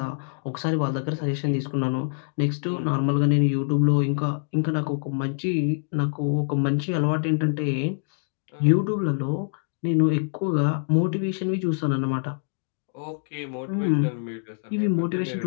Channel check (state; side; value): silent; right; digital silence